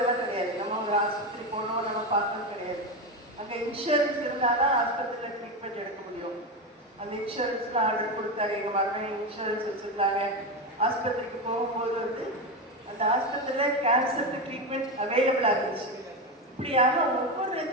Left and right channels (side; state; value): both; normal; correlation 0.15